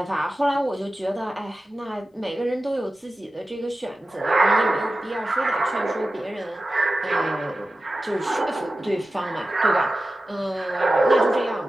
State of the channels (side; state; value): both; normal; correlation 0.94